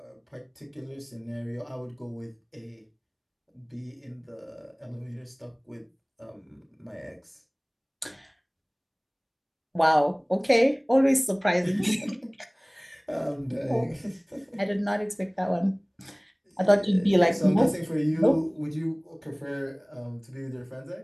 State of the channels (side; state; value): both; identical; correlation 1.00